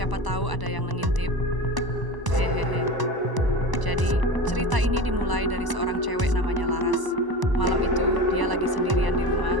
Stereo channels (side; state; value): left; late; 1.0 ms